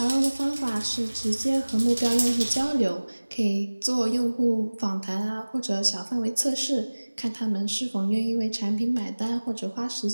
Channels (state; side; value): inverted; both; correlation -1.00